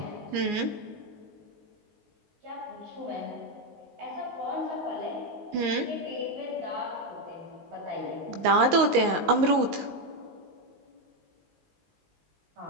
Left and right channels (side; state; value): left; late; 19 ms